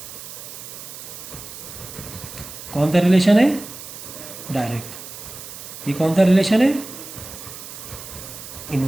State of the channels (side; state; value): right; noise; hiss, 12 dB below the sound